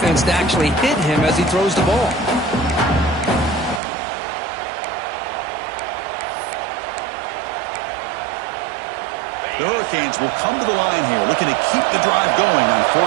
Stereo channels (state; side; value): drops out; left; at 3.8 s